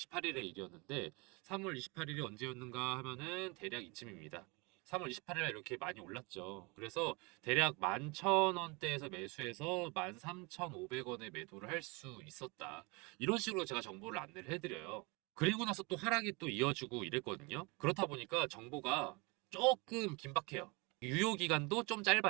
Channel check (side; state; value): left; quieter; 28.1 dB